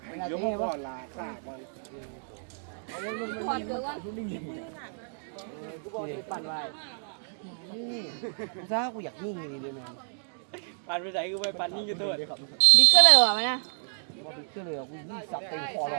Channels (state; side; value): silent; left; digital silence